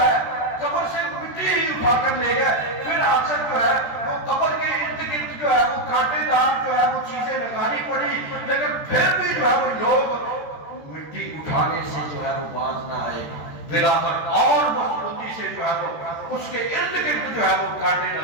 قبر سے مٹی ہی اٹھا کر لے گئے، پھر آخر جو ہے وہ قبر کے ارد گرد جو ہے وہ کانٹے دار جو ہے وہ چیزیں لگانی پڑی، لیکن پھر بھی جو ہے وہ لوگ مٹی اٹھانے سے جو ہے وہ باز نہ آئے، بلاخر اور مضبوطی سے جو ہے وہ اس کے ارد گرد جو ہے وہ کانٹے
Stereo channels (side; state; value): right; late; 13 ms